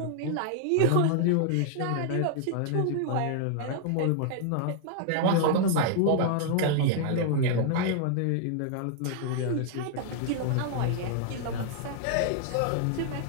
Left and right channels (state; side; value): different; both; correlation -0.01